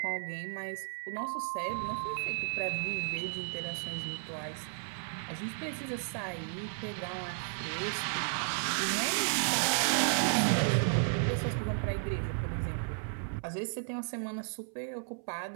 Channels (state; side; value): silent; left; 55 dB below the other